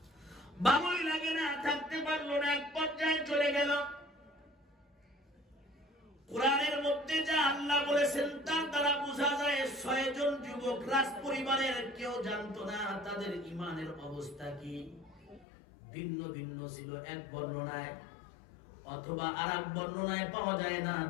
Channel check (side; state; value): right; drops out; at 15.5 s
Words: ভালোই লাগে না, থাকতে পারলো না, এক পর্যায়ে চলে গেল। কোরআনের মধ্যে যা আল্লাহ বলেছেন তার দ্বারা বোঝা যায় 6 জন যুবক রাজ পরিবারের কেউ জানতো না তাদের ঈমানের অবস্থা কি, ভিন্ন ভিন্ন ছিল এক বর্ণনায়, অথবা আরেক বর্ণনায় পাওয়া যায় না